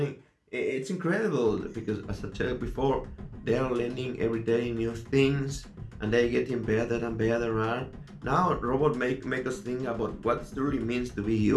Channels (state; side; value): identical; both; correlation 1.00